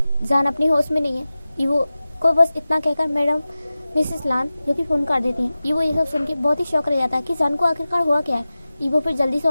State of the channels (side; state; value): both; inverted; correlation -0.96